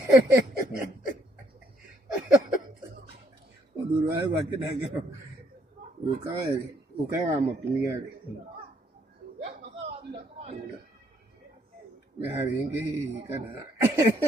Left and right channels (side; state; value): both; normal; correlation 0.69